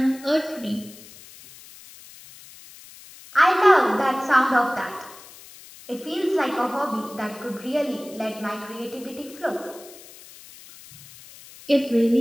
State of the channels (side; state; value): left; noise; hiss, 20 dB below the sound